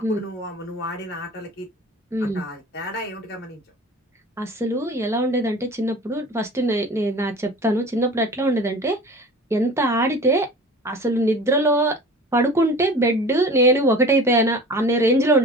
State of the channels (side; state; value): both; normal; correlation 0.40